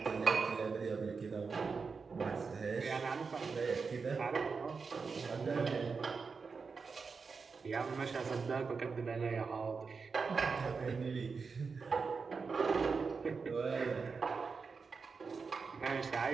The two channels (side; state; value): left; quieter; 5.0 dB